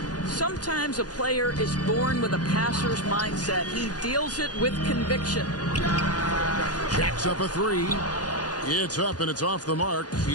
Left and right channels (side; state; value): right; late; 0.69 ms